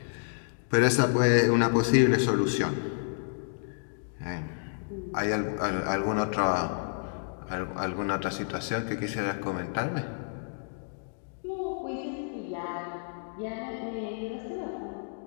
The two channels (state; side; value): silent; right; digital silence